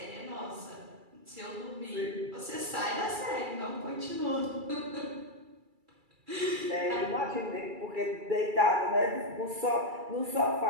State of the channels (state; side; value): late; left; 2.3 ms